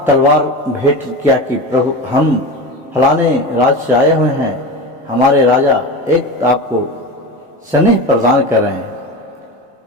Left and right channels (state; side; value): normal; both; correlation 0.26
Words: तलवार भेंट किया कि प्रभु हम फलाने राज्य से आए हुए हैं, हमारे राजा एक आपको स्नेह प्रदान कर रहे हैं।